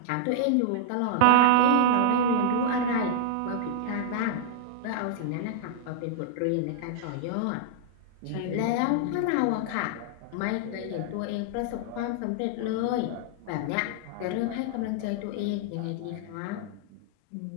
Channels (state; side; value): different; both; correlation 0.00